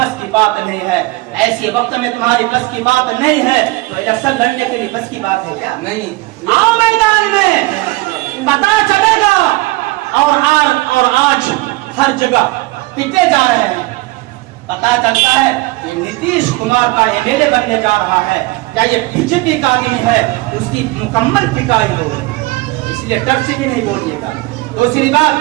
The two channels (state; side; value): quieter; left; 21.6 dB